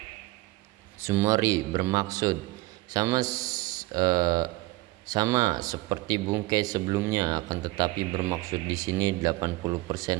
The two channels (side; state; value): left; quieter; 20.2 dB